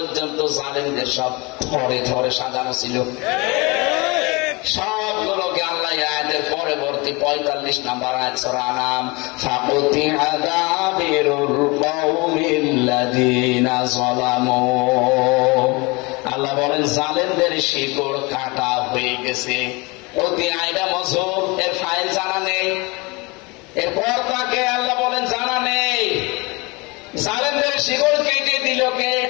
জালেমদের সব থরে থরে সাজানো ছিল। সবগুলোকে আল্লাহ আয়াতের পরবর্তী 45 নম্বর আয়াত সূরা আনাম, ফাকুতিআ দাবিরুল কওমিল্লাযিনা যালামু, আল্লাহ বলেন জালেমদের শিকড় কাটা হয়ে গেছে। অতি আয়টা মজুব, এর ফাইল জানা নেই, এরপর তাকে আল্লাহ বলেন জানা নেই। জালেমদের শিকড় কেটে দিল কে?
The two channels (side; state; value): right; quieter; 26.3 dB